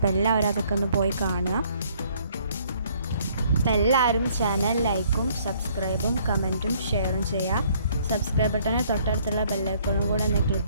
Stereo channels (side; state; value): both; inverted; correlation -0.63